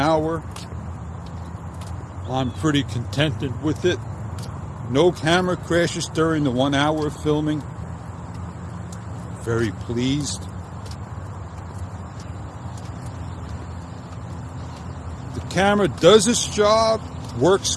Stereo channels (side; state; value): both; identical; correlation 1.00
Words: I'm pretty contented with it. No camera crashes during the 1 hour of filming. Very pleased. The camera does its job, works